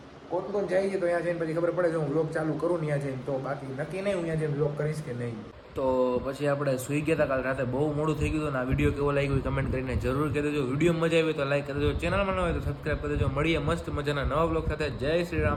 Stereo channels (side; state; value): both; identical; correlation 1.00